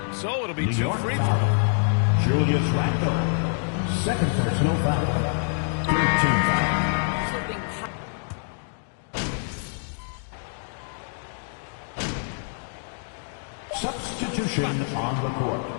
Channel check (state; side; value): silent; right; digital silence